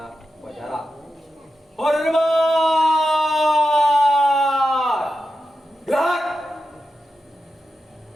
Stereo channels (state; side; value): normal; both; correlation 0.90